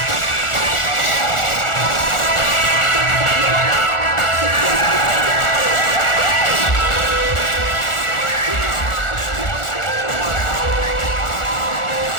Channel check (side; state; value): right; late; 1.4 ms